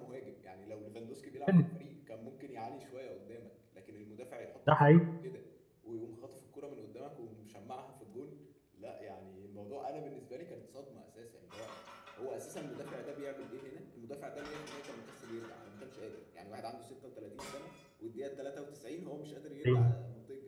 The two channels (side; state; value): both; identical; correlation 1.00